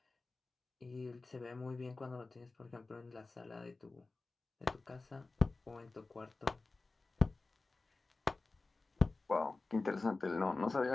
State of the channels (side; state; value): right; quieter; 3.5 dB